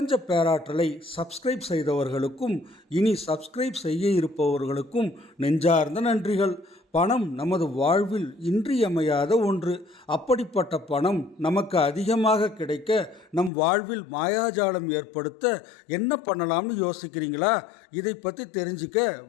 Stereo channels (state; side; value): drops out; right; at 13.5 s